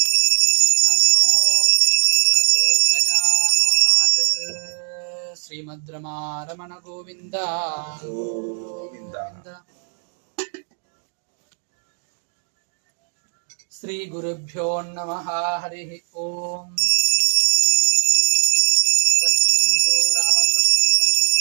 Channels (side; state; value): left; silent; 63 dB below the other